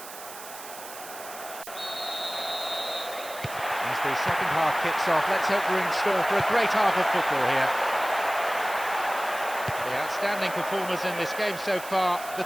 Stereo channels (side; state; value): right; noise; hiss, 13 dB below the sound